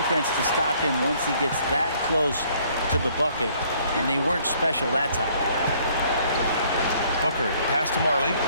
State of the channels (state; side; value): inverted; both; correlation -0.62